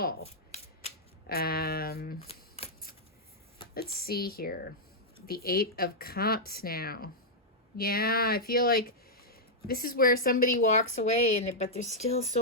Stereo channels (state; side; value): normal; both; correlation -0.07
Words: Let's see here. The Eight of Cups now. Yeah, I feel like this is where somebody walks away, but there's still